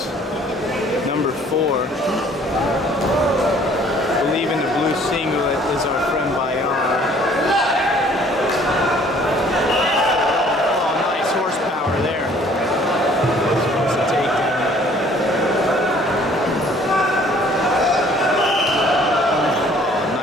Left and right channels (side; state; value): both; normal; correlation 0.56